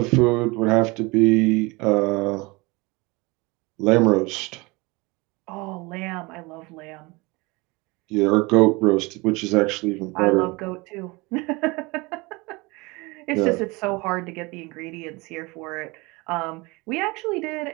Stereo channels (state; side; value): quieter; left; 24.9 dB